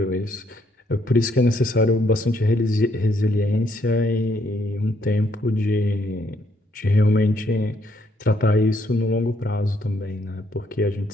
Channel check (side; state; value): both; normal; correlation 0.71